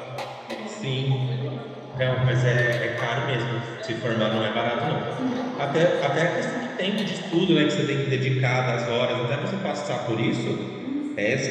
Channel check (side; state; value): both; identical; correlation 1.00